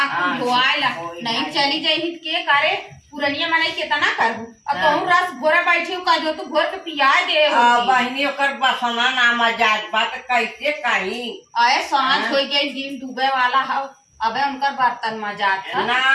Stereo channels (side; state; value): both; identical; correlation 1.00